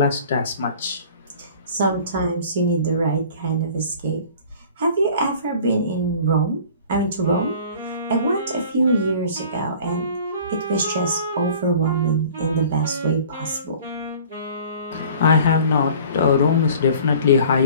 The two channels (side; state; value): both; inverted; correlation -0.47